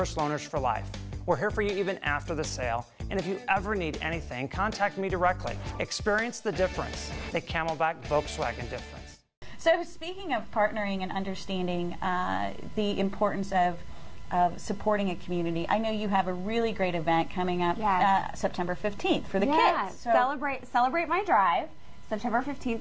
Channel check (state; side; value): identical; both; correlation 1.00